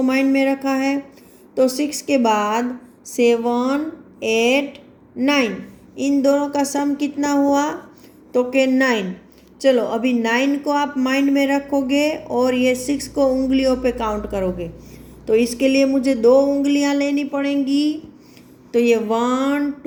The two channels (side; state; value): both; identical; correlation 1.00